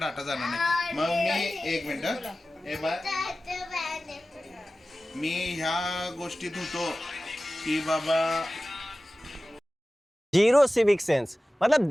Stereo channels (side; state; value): both; normal; correlation 0.96